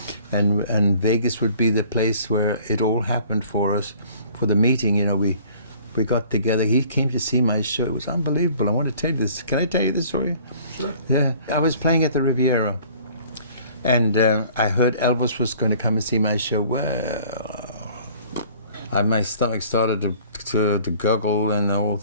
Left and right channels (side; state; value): both; inverted; correlation -0.53